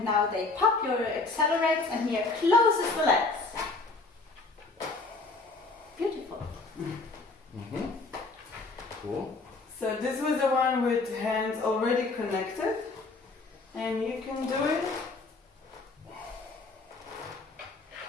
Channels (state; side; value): quieter; right; 3.6 dB